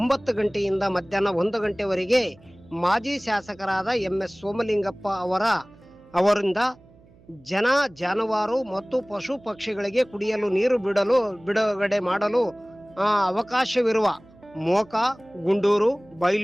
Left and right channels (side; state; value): right; noise; hum, 27 dB below the sound